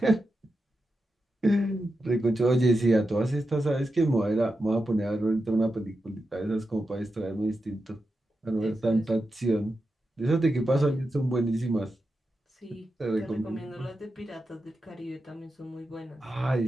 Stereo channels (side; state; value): both; normal; correlation 0.89